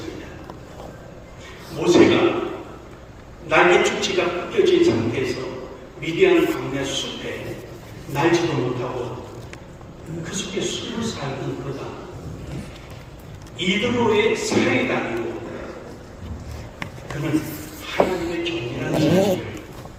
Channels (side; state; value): both; identical; correlation 1.00